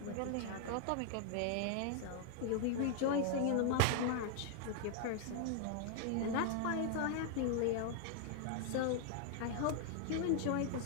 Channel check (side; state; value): both; different; correlation 0.00